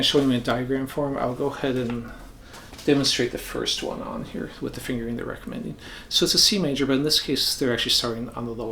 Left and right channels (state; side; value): identical; both; correlation 1.00